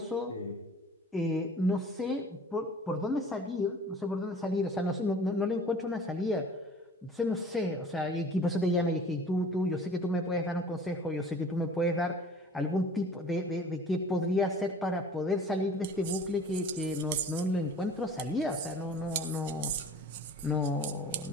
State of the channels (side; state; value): both; normal; correlation 0.47